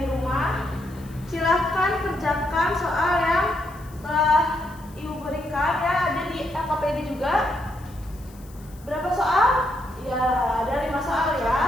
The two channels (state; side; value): noise; left; hiss, 25 dB below the sound